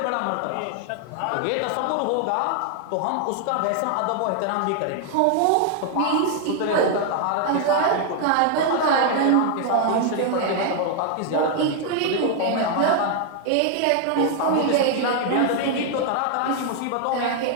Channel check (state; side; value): different; both; correlation 0.00